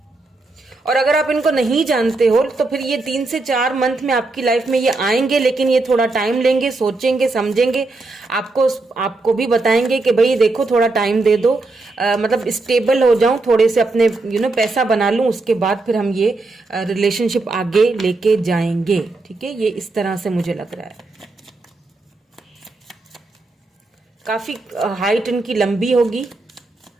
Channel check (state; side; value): quieter; left; 3.3 dB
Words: और अगर आप इनको नहीं जानते हो तो फिर ये 3 से 4 मंथ में आपकी लाइफ में ये आएंगे, लेकिन ये थोड़ा टाइम लेंगे, सोचेंगे, समझेंगे, आपको भी बताएंगे कि भाई देखो थोड़ा टाइम दे दो, मतलब स्टेबल हो जाऊं, थोड़े से अपने पैसा बना लूं, उसके बाद फिर हम ये रिलेशनशिप आगे लेके जाएंगे। ठीक है, ये इस तरह से मुझे लग रहा है। काफी हाइट इनकी लंबी होगी,